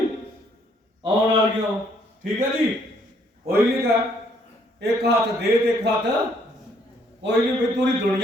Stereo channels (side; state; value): both; normal; correlation 0.67